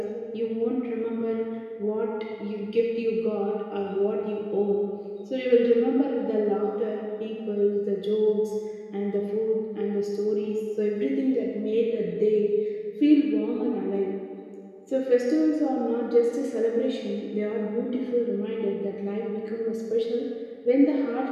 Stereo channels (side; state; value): both; identical; correlation 1.00